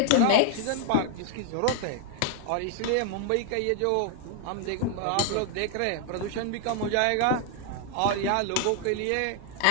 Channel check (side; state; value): both; different; correlation 0.00